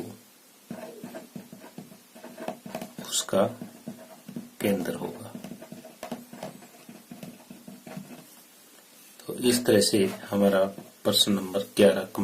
उसका केंद्र होगा। तो इस तरह से हमारा प्रश्न नंबर 11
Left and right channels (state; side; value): identical; both; correlation 1.00